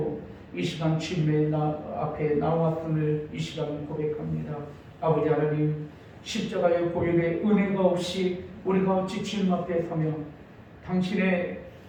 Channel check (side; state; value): both; identical; correlation 1.00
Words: 이 시간 주님의 앞에 나왔음을 이 시간 고백합니다. 아버지 하나님, 십자가의 보혈의 은혜가 없이 우리가 어찌 주님 앞에 서며 당신의